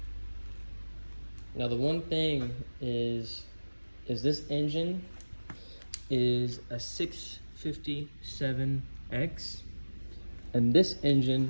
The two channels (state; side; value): inverted; both; correlation -1.00